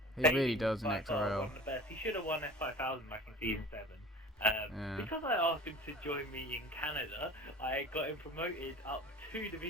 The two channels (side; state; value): both; normal; correlation 0.41